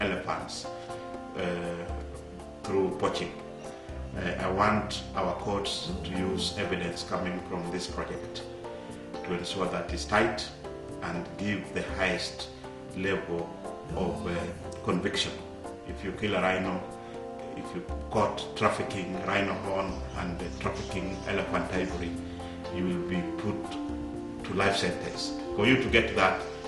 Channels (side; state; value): both; identical; correlation 1.00